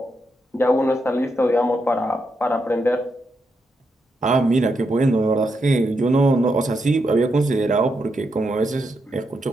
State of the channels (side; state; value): both; normal; correlation 0.82